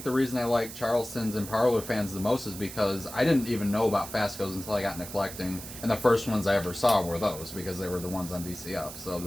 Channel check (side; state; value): right; noise; hiss, 12 dB below the sound